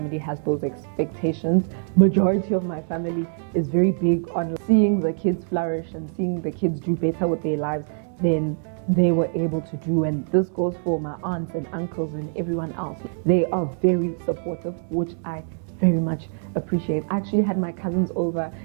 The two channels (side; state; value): left; silent; 63 dB below the other